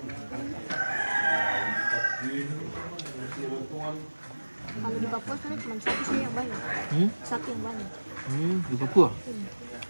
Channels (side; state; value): both; inverted; correlation -1.00